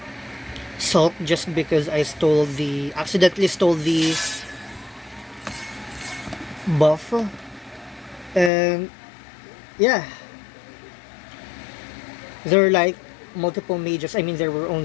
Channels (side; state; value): right; drops out; at 8.5 s